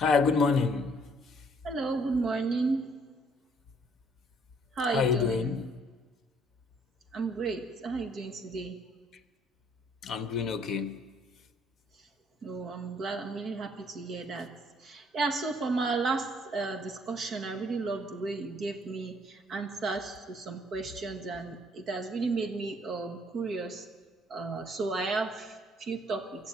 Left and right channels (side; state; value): both; normal; correlation 0.63